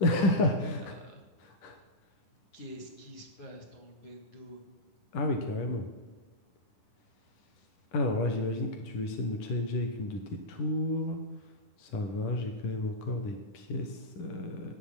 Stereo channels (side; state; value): right; late; 10 ms